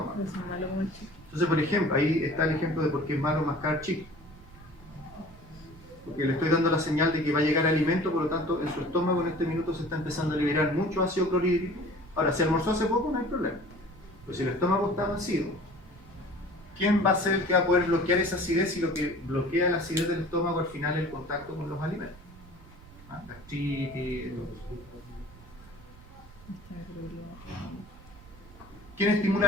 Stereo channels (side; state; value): right; noise; rumble, 21 dB below the sound